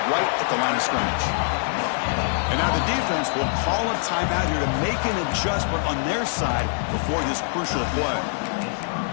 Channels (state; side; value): silent; right; 63 dB below the other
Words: right at the line of scrimmage. And now the defense will call a timeout here to make an adjustment on their side before this crucial play.